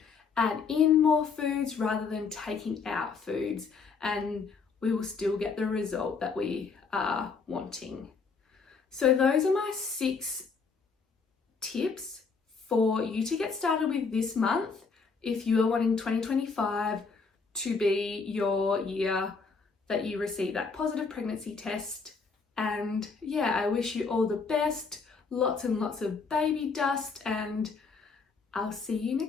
add in more foods rather than taking out foods, and we will still get the result that we are wanting. So those are my 6 tips for you to get started with this month if you are wanting 2025 to be your year that you receive that positive pregnancy test. And I wish you all the best, lots and lots of baby dust, and I'll see you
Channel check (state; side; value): quieter; right; 4.9 dB